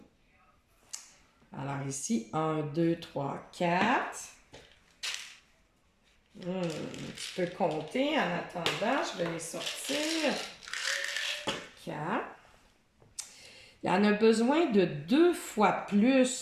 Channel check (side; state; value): both; identical; correlation 1.00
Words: Alors ici, 1, 2, 3, 4. Tu peux compter en attendant, je vais les sortir. 4. Il y en a besoin de 2 fois